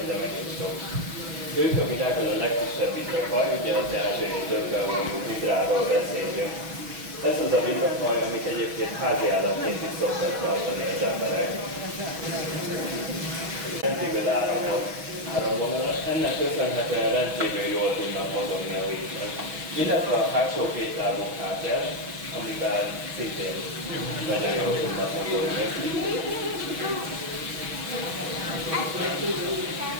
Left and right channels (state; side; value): late; left; 6.2 ms